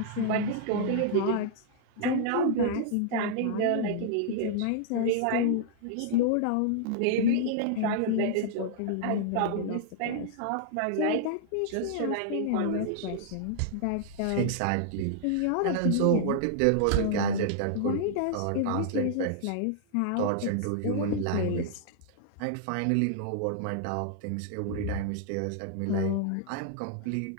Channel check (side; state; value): both; different; correlation -0.01